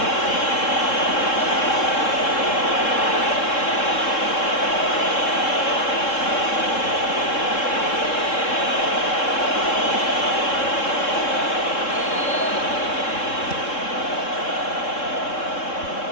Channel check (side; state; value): right; late; 3.7 ms